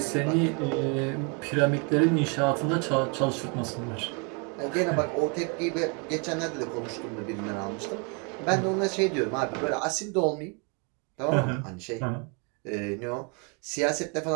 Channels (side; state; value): left; quieter; 34.9 dB